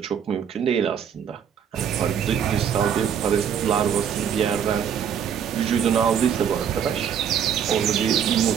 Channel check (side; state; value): left; quieter; 8.3 dB